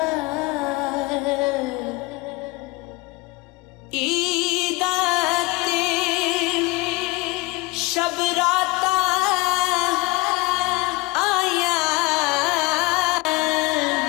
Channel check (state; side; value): quieter; right; 23.6 dB